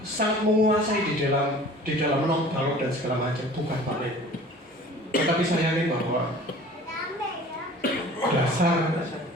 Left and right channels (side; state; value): both; normal; correlation 0.45